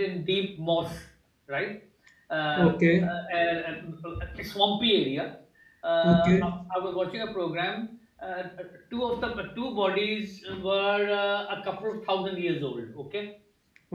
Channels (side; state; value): both; identical; correlation 1.00